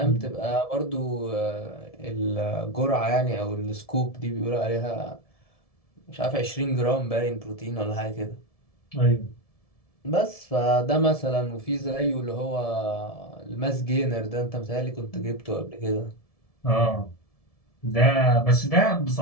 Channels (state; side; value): late; right; 1.7 ms